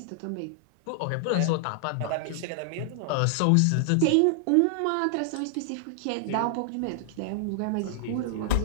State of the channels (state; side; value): different; both; correlation 0.00